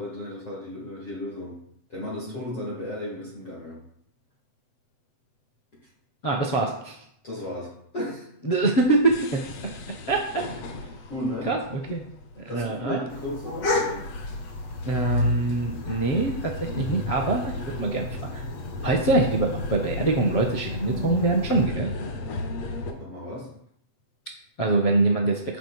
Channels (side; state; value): right; late; 7.9 ms